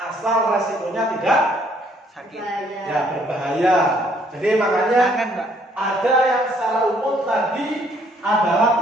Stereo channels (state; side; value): normal; both; correlation 0.65